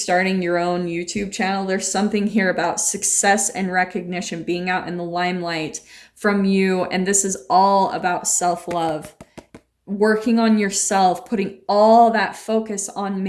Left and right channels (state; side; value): identical; both; correlation 1.00